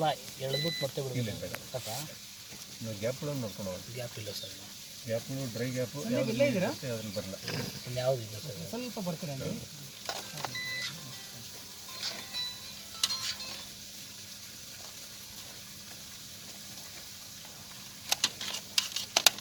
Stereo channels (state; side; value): noise; right; rumble, 30 dB below the sound